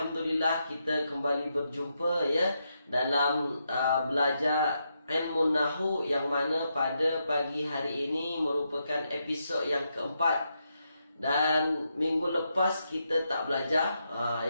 kita kembali berjumpa ya dalam belajar ilmu nahwu yang mana pada pagi hari ini merupakan episod yang keempat. Dan minggu lepas kita tak belajar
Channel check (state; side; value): inverted; both; correlation -0.82